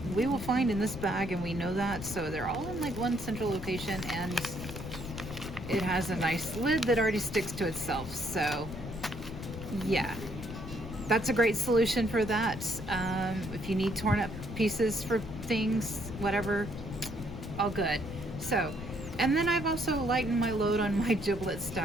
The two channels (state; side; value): noise; left; rumble, 10 dB below the sound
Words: we will find in this bag, and we know that. So they're all in like one central location, and it has a nice lid that already sticks to itself. So yeah, that's a great solution for that. If you need torn up pieces for things, whatever, all good. So, and then I've also lightened my load on my giblet